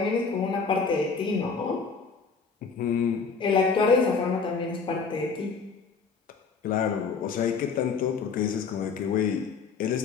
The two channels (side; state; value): right; quieter; 5.2 dB